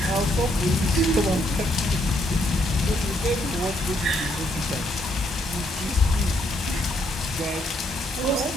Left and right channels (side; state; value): both; normal; correlation 0.73